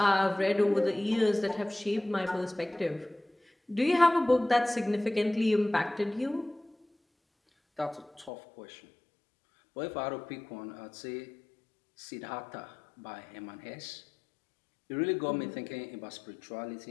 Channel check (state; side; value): drops out; right; at 8.3 s